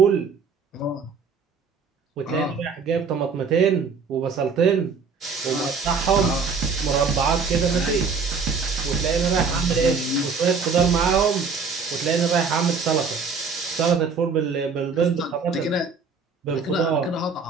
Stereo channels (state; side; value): quieter; left; 5.1 dB